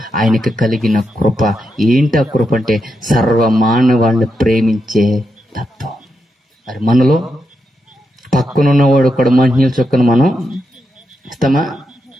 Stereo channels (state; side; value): normal; both; correlation 0.85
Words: ఆయనకి కలిగిన కృప. ఏంటి ఆ కృప అంటే? సర్వ మానవాళ్ళని ప్రేమించే తత్వం. మరి మనలో పక్కనున్నవాడు కూడా మంచినీళ్ళ చొక్కను మనం ఇస్తామా